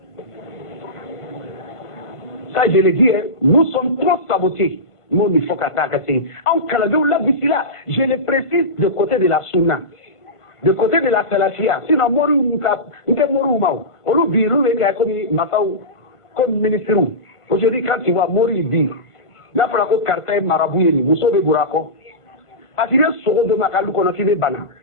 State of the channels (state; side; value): late; right; 1.5 ms